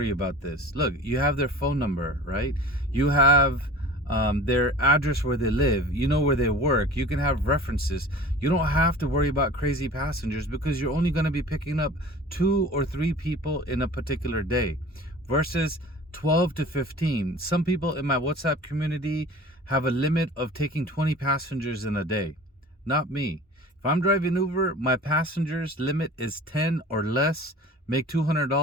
about this. Look, you have their phone number, right? You have their address where they live. You know where they work. You can have references. You don't have to worry about crazy passengers because you're only going to be picking up 2 or 3 people in a particular day versus 12 to 15. Some people in my WhatsApp community have a limit of taking 20 passengers in a day. Not me. If I'm driving Uber, my passengers limit is 10 or less. Make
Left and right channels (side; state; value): both; normal; correlation 0.41